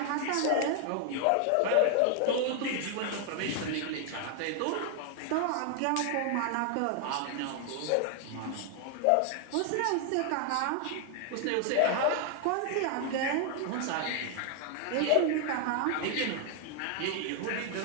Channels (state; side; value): different; both; correlation 0.00